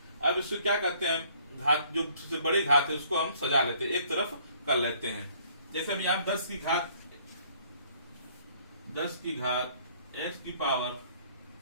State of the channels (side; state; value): both; inverted; correlation -0.61